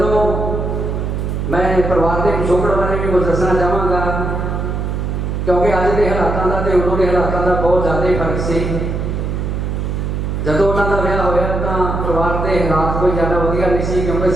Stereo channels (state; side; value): noise; right; hum, 2 dB below the sound